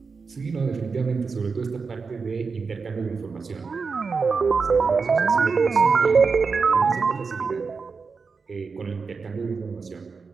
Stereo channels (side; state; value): left; quieter; 4.9 dB